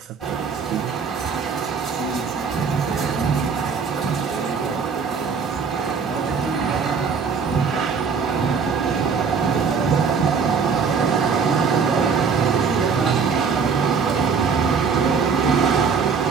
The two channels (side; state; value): left; quieter; 5.7 dB